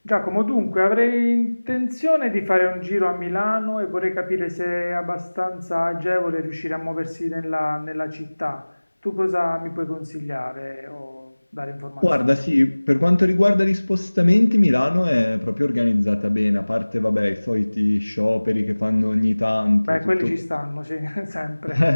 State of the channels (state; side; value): inverted; both; correlation -1.00